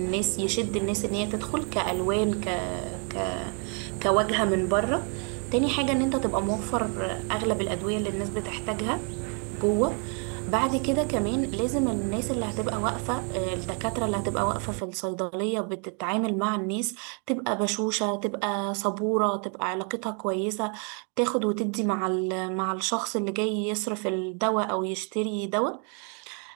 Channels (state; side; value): quieter; left; 38.8 dB